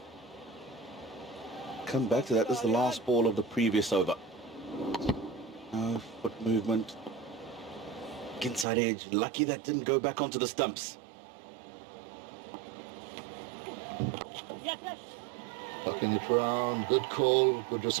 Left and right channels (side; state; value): left; drops out; at 8.7 s